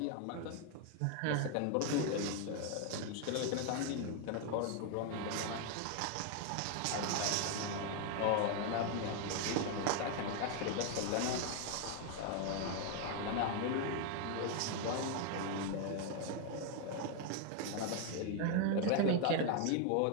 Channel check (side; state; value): both; different; correlation 0.00